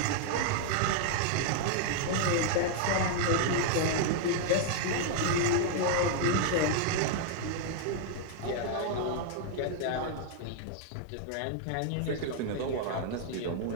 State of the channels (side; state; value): both; different; correlation 0.00